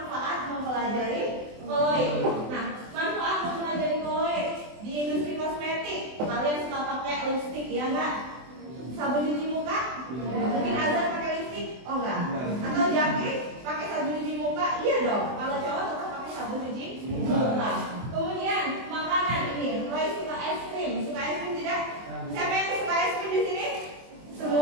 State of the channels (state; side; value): late; left; 24 ms